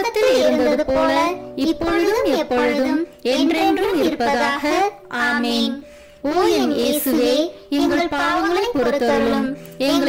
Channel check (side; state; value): both; identical; correlation 1.00